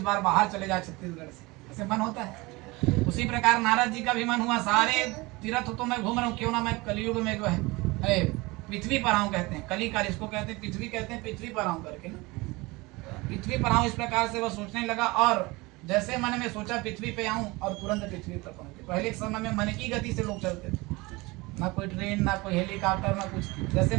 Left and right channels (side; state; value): left; quieter; 23.3 dB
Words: बार बाहर चले जाए छत्तीसगढ़ से, ऐसे मन होता है। उसी प्रकार नारद जी का भी मन हुआ, सारे तीर्थ तो मैं घूम रहा हूँ, क्यों ना मैं कलयुग में जो है पृथ्वी पर आऊँ। कहते हैं कलिकाल, इसको कहते हैं पृथ्वी, कहते हैं पृथ्वी पर आऊँ करके ना, पृथ्वी पर आऊँ। इस प्रकार से वह सोचने लगा, और जैसे मन में सोचा पृथ्वी पे आऊँ और तुरंत पृथ्वी पर पहुंचे। पहले के समय में मन की गति से लोग चलते थे, ना कोई ट्रेन, ना कोई हेलीकॉप्टर, ना कुछ। जैसे